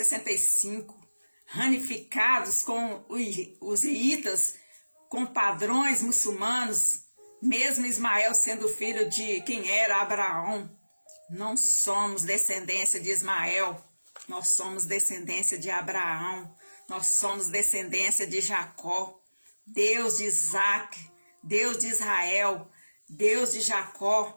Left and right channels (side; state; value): both; inverted; correlation -1.00